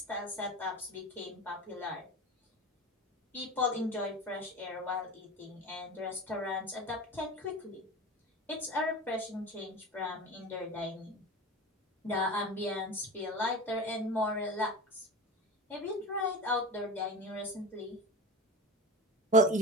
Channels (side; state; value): both; normal; correlation 0.30